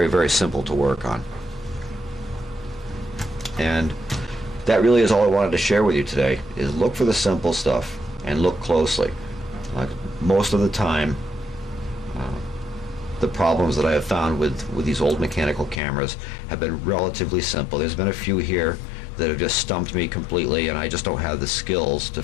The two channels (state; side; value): drops out; right; at 15.8 s